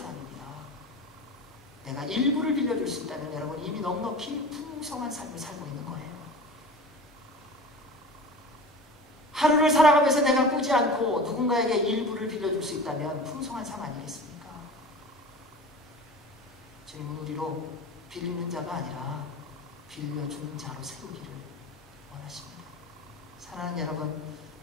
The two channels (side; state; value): both; normal; correlation 0.35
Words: 내가 1불을 빌려줄 수 있다면 여러분 이미 넉넉히 풍성한 삶을 살고 있는 거예요. 하루를 살아가면서 내가 꾸지 않고 누군가에게 1불을 빌려줄 수 있다면 풍성한 삶 아니겠습니까? 주님은 우리로 빌리는 자가 아니라 빌려주는 자로 세우기를 원하십니다. 사랑하는 여러분,